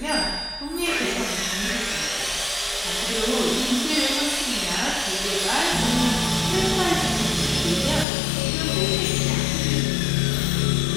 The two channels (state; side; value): drops out; right; at 8.1 s